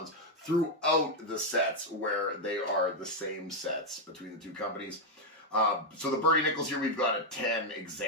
throughout the sets, where they are the same sets between the two companies. So the Nicholls here, we've got a 10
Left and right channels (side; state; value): both; normal; correlation 0.01